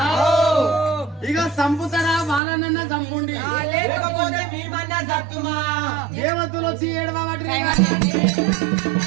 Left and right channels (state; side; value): drops out; left; at 2.4 s